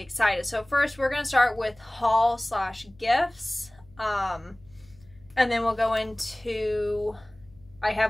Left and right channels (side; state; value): left; noise; hum, 27 dB below the sound